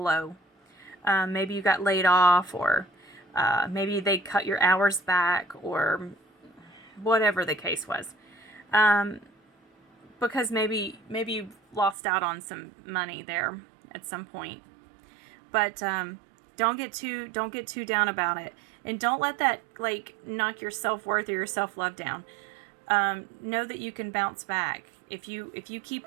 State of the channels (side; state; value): left; drops out; at 12.0 s